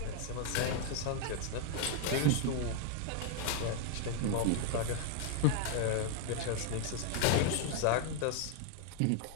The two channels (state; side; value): different; both; correlation 0.00